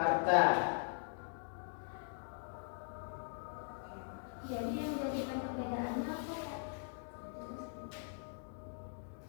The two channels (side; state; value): right; silent; digital silence